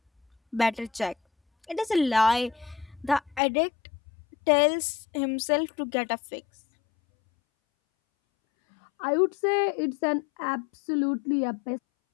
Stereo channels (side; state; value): right; drops out; at 3.4 s